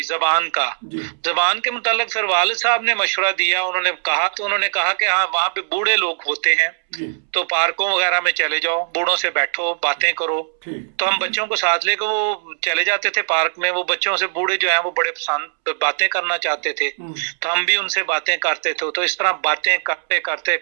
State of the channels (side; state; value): left; silent; 66 dB below the other